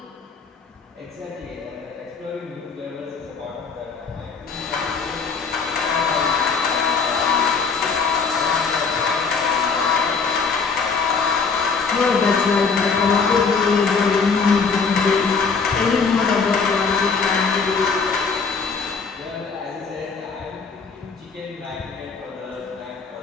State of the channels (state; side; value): quieter; right; 5.1 dB